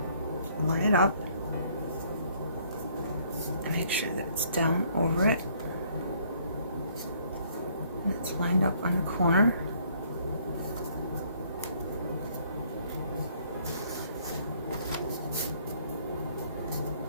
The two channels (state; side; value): inverted; both; correlation -0.63